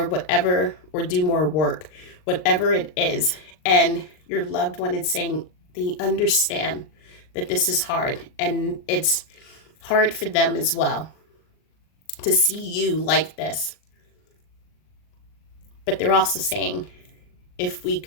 whatever, or do more work, whatever it is. And your loved one is saying they understand that this is hard, and it's hard for them as well to see you like this. But they're also saying, if we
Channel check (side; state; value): right; late; 39 ms